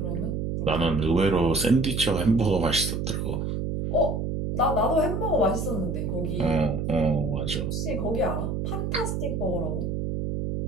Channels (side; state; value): right; noise; hum, 2 dB below the sound